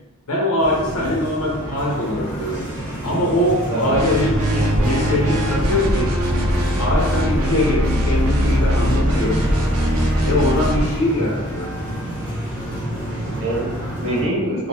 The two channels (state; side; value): normal; both; correlation 0.53